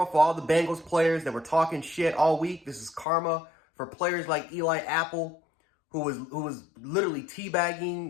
for all the Bengals players that were talking shit all week. This is karma for players like Eli Apple, who was literally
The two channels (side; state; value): right; drops out; at 3.1 s